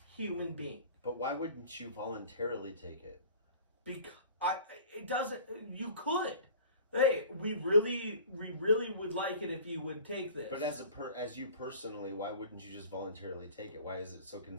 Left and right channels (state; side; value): inverted; both; correlation -0.44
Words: human being. But why wouldn't you voluntarily take it? Because it doesn't. You could. Hey, we really would like it if you would take this. But as you personally, why wouldn't you just voluntarily take it? Why is it so